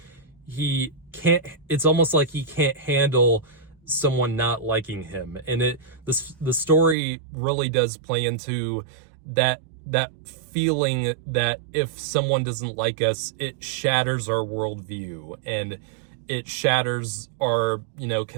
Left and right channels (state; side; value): drops out; left; at 7.0 s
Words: almost like he can't handle someone not liking him. And the story really does play into that feeling that if someone doesn't like us, it shatters our worldview and it shatters our,